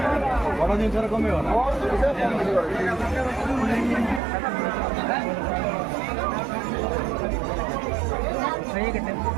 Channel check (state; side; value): drops out; left; at 4.2 s